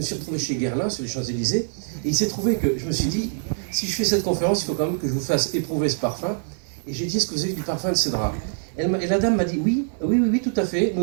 suis retrouvé chez Guerlain sur les Champs-Élysées, et il s'est trouvé que je me suis dit, si je fais cette conférence, il faut quand même que je vous fasse éprouver ce parfum, et j'ai dit, est-ce que vous avez du parfum de cédra? Et la dame m'a dit, oui, tout à fait,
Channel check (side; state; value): left; silent; digital silence